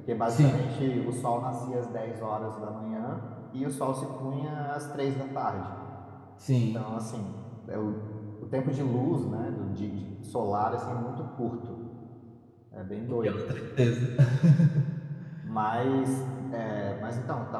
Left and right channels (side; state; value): both; identical; correlation 1.00